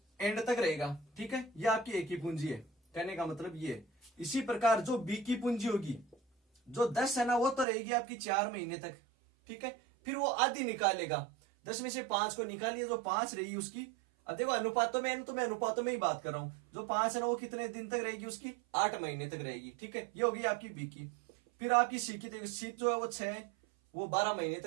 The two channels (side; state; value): left; drops out; at 7.7 s